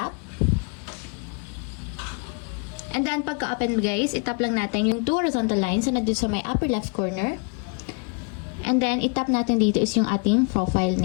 And then pagka-open guys, itap lang natin yung two horizontal lines na nandito sa may upper left corner. And then, itap natin dito is yung ating profile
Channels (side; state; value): right; quieter; 34.2 dB